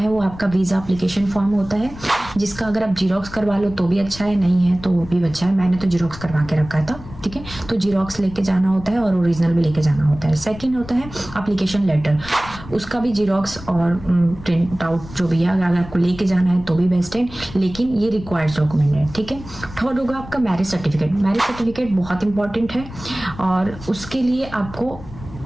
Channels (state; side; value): noise; left; rumble, 15 dB below the sound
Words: वो आपका वीजा एप्लीकेशन फॉर्म होता है, जिसका अगर आप जीरोक्स करवा लो तो भी अच्छा है, नहीं है तो वो भी अच्छा है। मैंने तो जीरोक्स करवा के रखा था, ठीक है। तो जीरोक्स लेके जाना होता है और ओरिजिनल भी लेके जाना होता है। सेकंड होता है एप्लीकेशन लेटर, उसका भी जीरोक्स और प्रिंट आउट जो भी है अगर आपको लेके जाना है तो भी बेस्ट है, लेकिन ये रिक्वायर्ड डॉक्यूमेंट है, ठीक है। थर्ड होगा आपका मैरिज सर्टिफिकेट। मैरिज सर्टिफिकेट बहुत इंपॉर्टेंट है और उसके लिए आपको